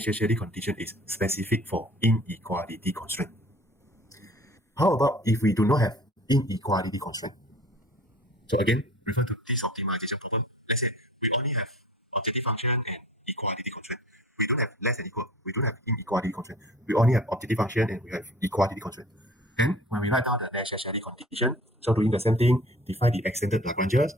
condition is specific for inequality constraint. How about if we do not have inequality constraint? So again, refer to this optimization problem. Let's say we only have objective function and equality constraint. We don't have less than equal. We don't have inequality constraint. We only have objective function and we have equality constraint. And when we write down the necessary condition, so doing the same thing, define the extended Lagranges,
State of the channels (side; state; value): both; normal; correlation 0.46